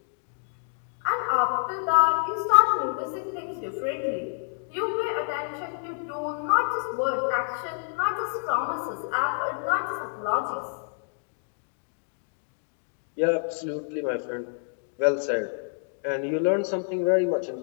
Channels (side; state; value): right; silent; digital silence